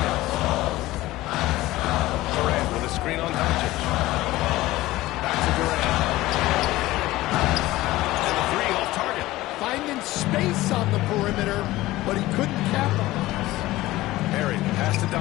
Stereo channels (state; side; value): quieter; right; 17.5 dB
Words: Durant with a screen on Doncic. Back to Durant. And the 3 off target. Finding space on the perimeter, but he couldn't capitalize. Barry, pass to